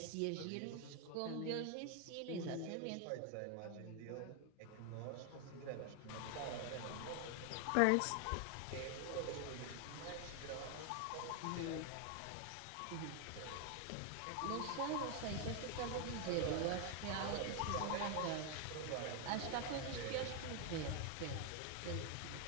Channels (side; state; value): both; different; correlation 0.01